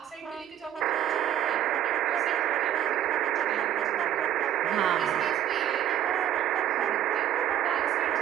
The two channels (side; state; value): left; quieter; 10.7 dB